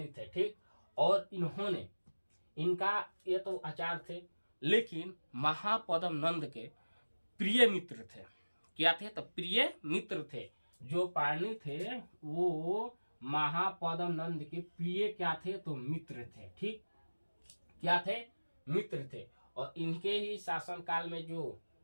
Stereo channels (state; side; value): inverted; both; correlation -1.00